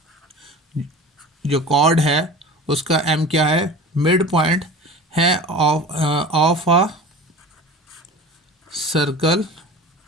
जो कॉर्ड है उसका m क्या है, मिड पॉइंट है of a circle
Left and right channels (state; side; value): normal; both; correlation 0.37